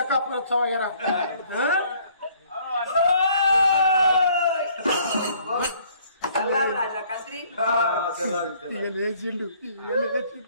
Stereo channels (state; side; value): inverted; both; correlation -0.60